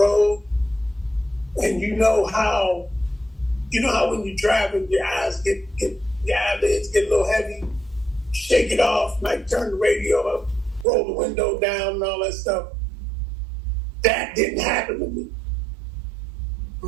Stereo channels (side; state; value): left; drops out; at 10.9 s